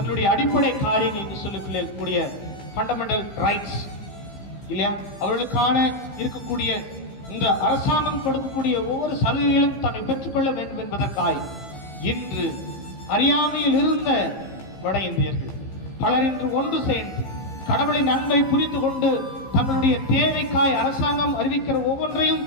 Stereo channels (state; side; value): late; right; 15 ms